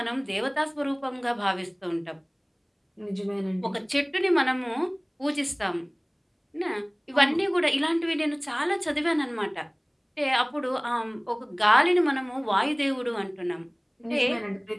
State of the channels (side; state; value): both; identical; correlation 1.00